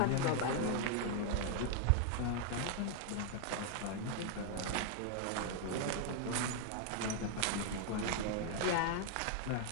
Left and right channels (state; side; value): different; both; correlation 0.00